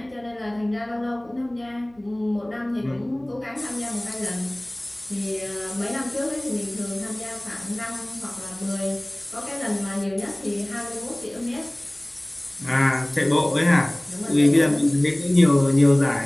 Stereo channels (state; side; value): noise; right; hum, 29 dB below the sound